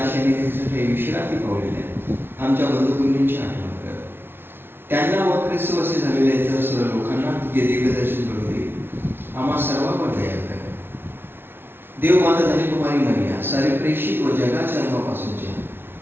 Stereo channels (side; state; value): left; late; 0.11 ms